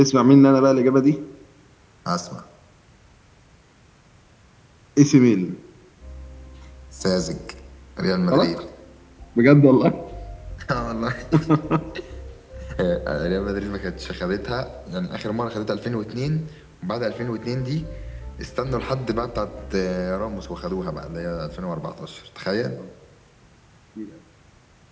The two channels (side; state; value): both; identical; correlation 1.00